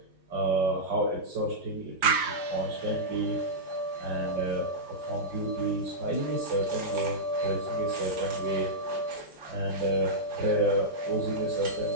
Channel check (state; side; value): late; left; 5.0 ms